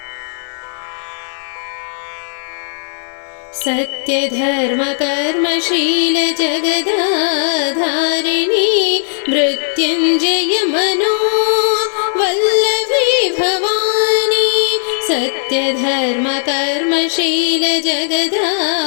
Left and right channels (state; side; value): silent; right; 69 dB below the other